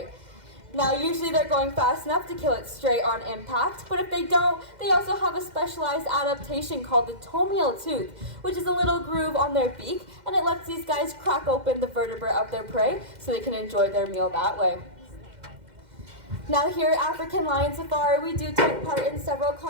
Now usually they're going fast enough to kill it straight on impact, but if they don't, they also have a specialized adaptation called the tomial tooth, which is a little groove on their beak, and it lets these guys crack open the vertebrae of their prey so they can enjoy their meal that way. Now here at African Lion Safari, we do take part in several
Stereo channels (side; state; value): left; late; 2.1 ms